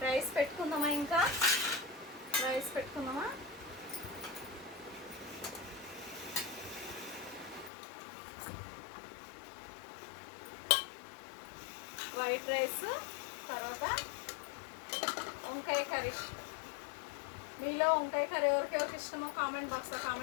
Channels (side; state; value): right; drops out; at 7.7 s